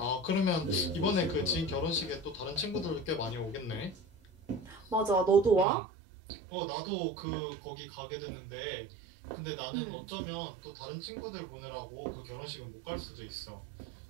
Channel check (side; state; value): left; drops out; at 5.7 s